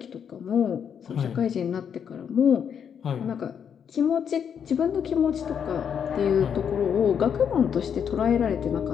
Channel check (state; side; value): quieter; right; 7.8 dB